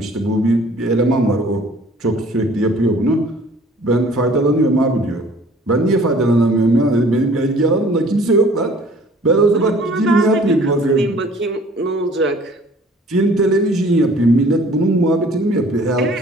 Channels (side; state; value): both; normal; correlation 0.53